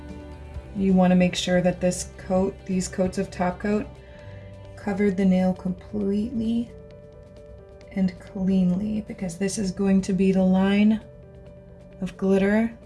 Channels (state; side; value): identical; both; correlation 1.00